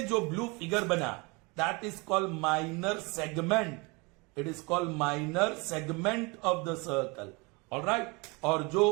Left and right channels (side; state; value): left; quieter; 27.5 dB